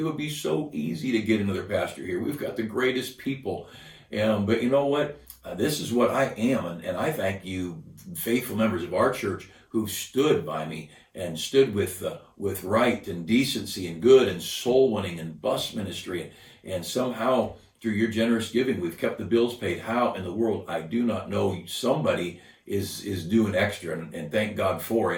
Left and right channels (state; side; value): identical; both; correlation 1.00